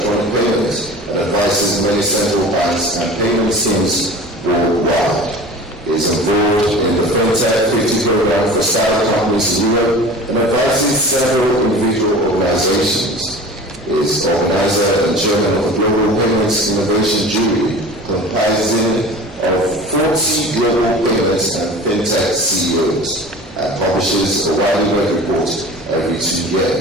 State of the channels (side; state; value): both; normal; correlation 0.39